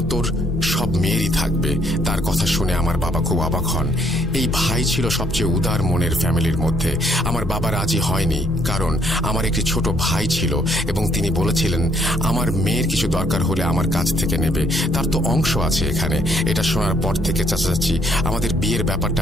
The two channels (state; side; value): noise; right; hum, 15 dB below the sound